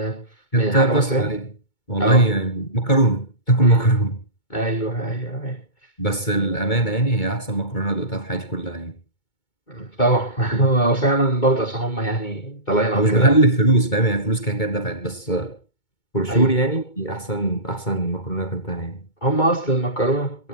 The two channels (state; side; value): late; right; 2.2 ms